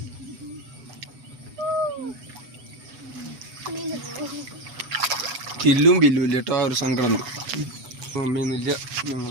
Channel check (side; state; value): left; late; 8.0 ms